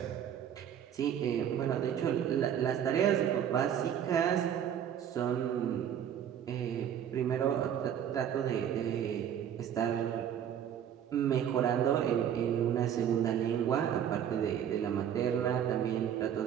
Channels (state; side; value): quieter; left; 9.4 dB